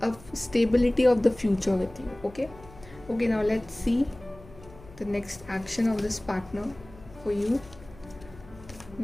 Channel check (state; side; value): noise; left; hum, 21 dB below the sound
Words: stability of the future with you. Okay, now let's see the next action of this partner for you.